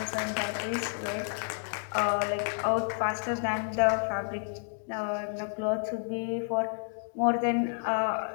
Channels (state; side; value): silent; right; 58 dB below the other